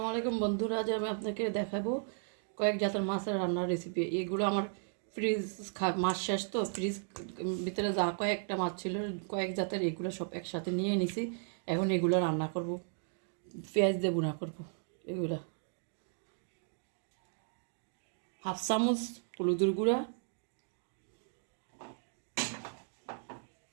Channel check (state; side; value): silent; left; digital silence